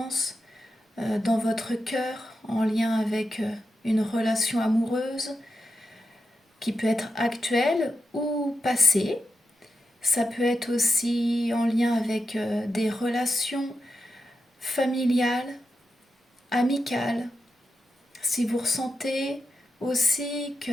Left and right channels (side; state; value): both; normal; correlation 0.88